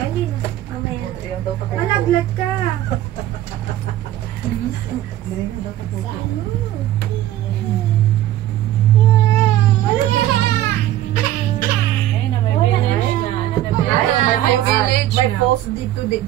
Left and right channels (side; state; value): left; quieter; 13.4 dB